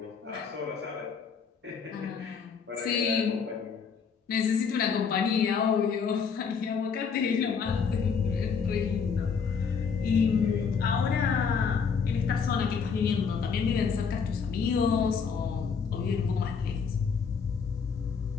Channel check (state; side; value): quieter; right; 6.0 dB